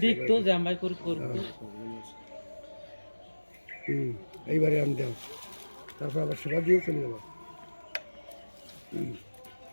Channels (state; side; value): inverted; both; correlation -1.00